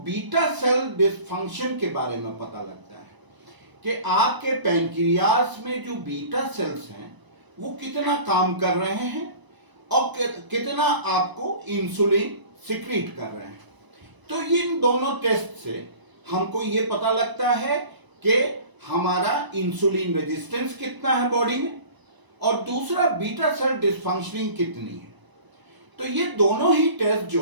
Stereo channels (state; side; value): late; left; 1.0 ms